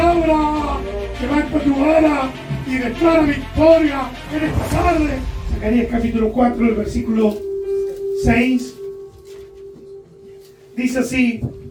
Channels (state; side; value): identical; both; correlation 1.00